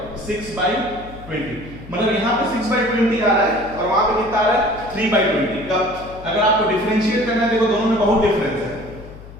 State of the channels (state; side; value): noise; left; hum, 17 dB below the sound